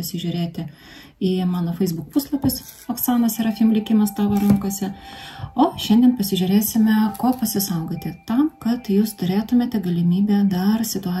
į mano Facebook puslapis Oksana Serafim likimas tavo rankose. O šiandien pasižiūrėsime, ko pasisaugoti tam, kad jūs turėtumėte galimybę dar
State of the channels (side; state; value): both; identical; correlation 1.00